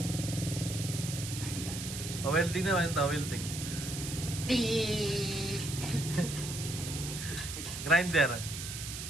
O welding naman ito, welding. Tik! Grinder.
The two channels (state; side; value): noise; right; hiss, 7 dB below the sound